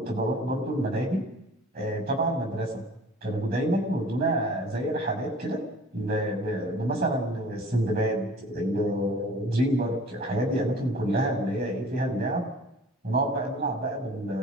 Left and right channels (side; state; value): both; normal; correlation 0.47